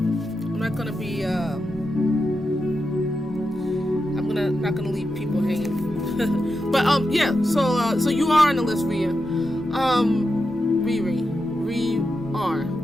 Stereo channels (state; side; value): normal; both; correlation 0.88